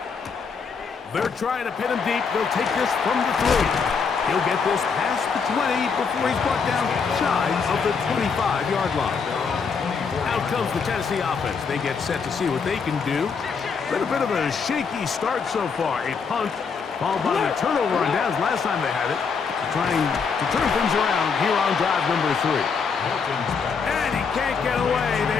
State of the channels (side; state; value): right; quieter; 5.6 dB